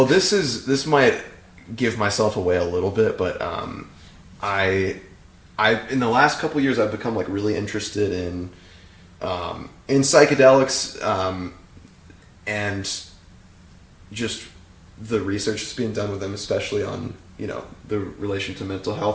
this might give myself away a little bit, but I in the last couple years I've become like really interested in psychedelics, and just the research that's being done with them, especially on, you know, the relation to mental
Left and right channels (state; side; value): identical; both; correlation 1.00